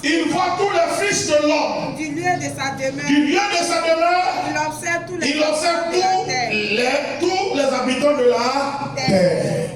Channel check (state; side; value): noise; left; rumble, 28 dB below the sound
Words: Il voit tous les fils de l'homme. Du lieu de sa demeure. Du lieu de sa demeure. Il observe tous les tous les habitants de la terre.